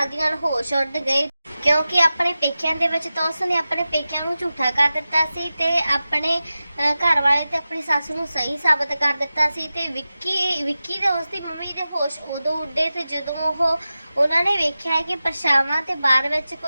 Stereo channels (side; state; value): both; inverted; correlation -0.94